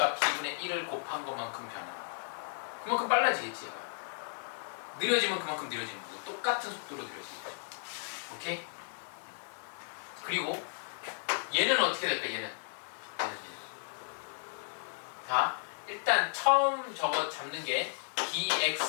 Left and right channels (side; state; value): right; silent; digital silence